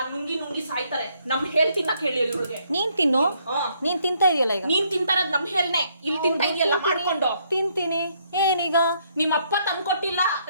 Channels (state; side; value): inverted; both; correlation -0.70